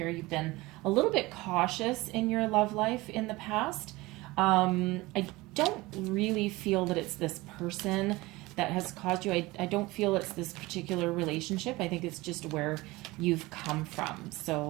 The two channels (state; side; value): quieter; left; 21.0 dB